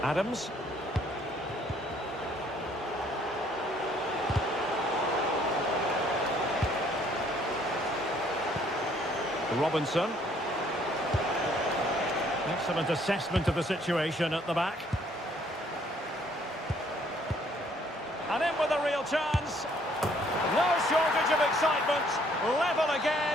Adams. Robinson. Excellent assessment of the situation at the back. And in with a real chance. No shortage of excitement. Level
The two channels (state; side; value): normal; both; correlation 0.63